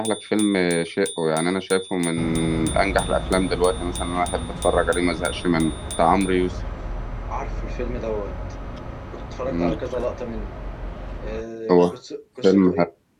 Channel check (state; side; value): identical; both; correlation 1.00